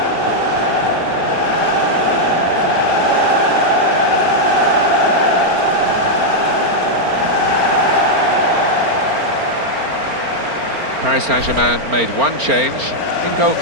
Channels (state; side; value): late; left; 4.4 ms